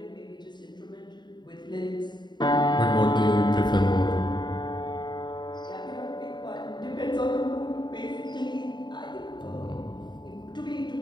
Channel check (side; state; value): right; late; 0.21 ms